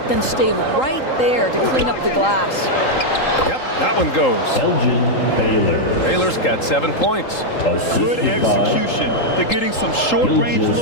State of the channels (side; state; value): right; late; 3.8 ms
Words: then stay right there to clean up the glass. Yep, that one goes. Elgin Baylor. Baylor's got 7 points. Good execution. They're getting some short-range